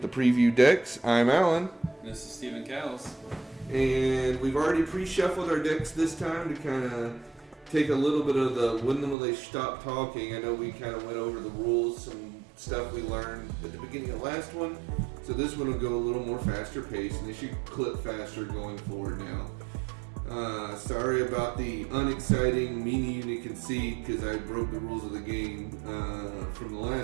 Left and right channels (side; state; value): left; drops out; at 9.2 s